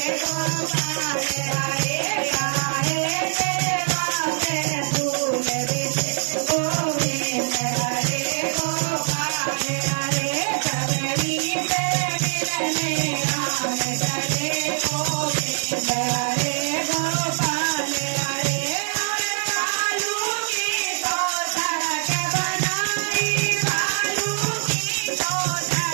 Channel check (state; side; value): silent; left; digital silence